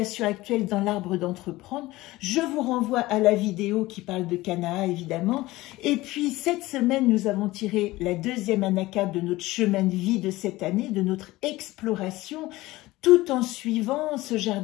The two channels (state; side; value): quieter; right; 18.7 dB